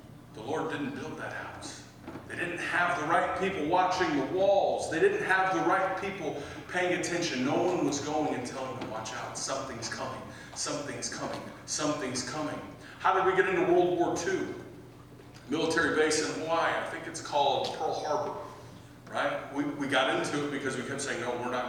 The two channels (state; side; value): identical; both; correlation 1.00